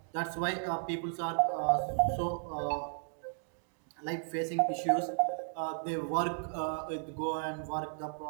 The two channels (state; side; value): silent; left; digital silence